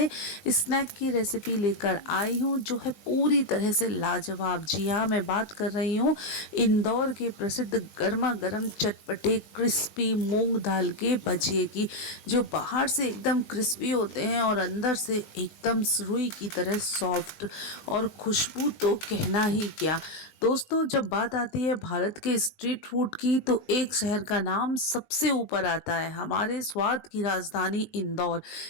स्नैक की रेसिपी लेकर आई हूँ जो है पूरी तरह से लाजवाब। जी हाँ, मैं बात कर रही हूँ इंदौर के प्रसिद्ध गर्मा गर्म चटपटे क्रिस्पी मूंग दाल के भजिए की, जो बाहर से एकदम क्रिस्पी होते हैं और अंदर से एकदम रुई की तरह सॉफ्ट। और खुशबू तो कहना ही क्या। दोस्तों, जब बात आती है भारत के स्ट्रीट फूड की तो एक शहर का नाम सबसे ऊपर आता है, हमारे स्वाद की राजधानी इंदौर।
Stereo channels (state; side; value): late; right; 20 ms